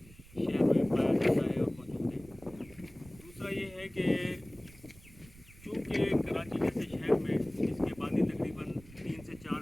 में पाया जाता है और मौजूद है। दूसरा ये है कि चूँकि कराची जैसे शहर में इसकी आबादी तकरीबन 3 से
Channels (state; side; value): noise; right; rumble, 21 dB below the sound